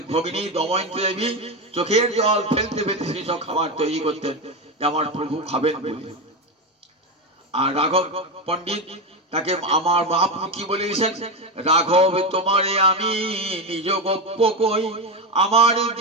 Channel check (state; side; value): normal; both; correlation 0.14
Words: ভগিনী দময়ন্তী দেবী চোখের জল ফেলতে ফেলতে সেই সব খাবার তৈরি করতেন যে আমার প্রভু খাবেন বলে। আর রাঘব পণ্ডিত তাকে আমার মহাপ্রভু কি বলেছেন? রাঘব তোমারে আমি নিজ গপ্প কই, আমার